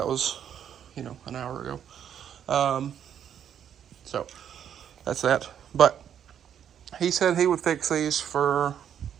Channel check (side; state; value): left; quieter; 9.2 dB